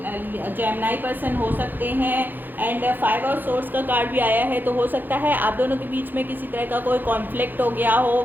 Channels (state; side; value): late; left; 0.089 ms